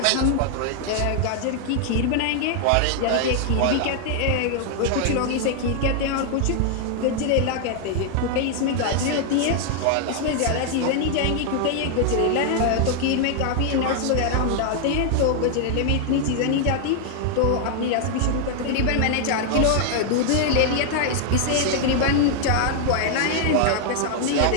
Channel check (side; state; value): both; different; correlation 0.00